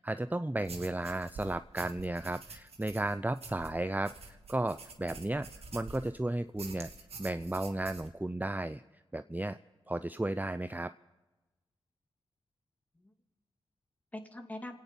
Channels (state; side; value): normal; both; correlation 0.91